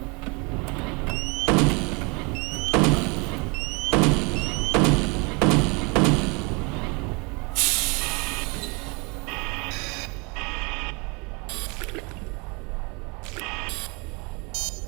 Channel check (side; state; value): left; quieter; 30.2 dB